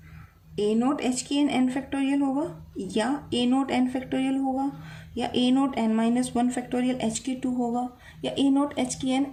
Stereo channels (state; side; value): identical; both; correlation 1.00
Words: a naught h की एन एन फैक्टोरियल होगा या ए नोट एन फैक्टोरियल होगा या a naught n minus one factorial h की 2 होगा या ए नोट एच की n